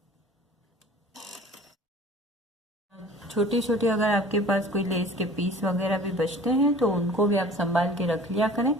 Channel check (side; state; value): both; normal; correlation 0.46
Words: छोटे छोटे अगर आपके पास कोई लेस के पीस वगैरह भी बचते हैं तो उनको भी आप संभाल के रख लिया करें।